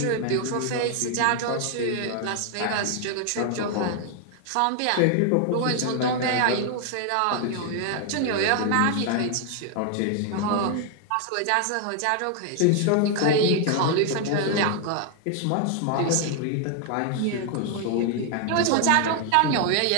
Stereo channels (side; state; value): both; different; correlation 0.00